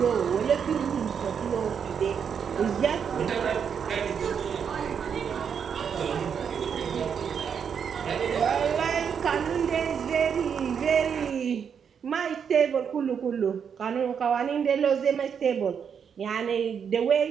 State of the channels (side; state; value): left; quieter; 7.2 dB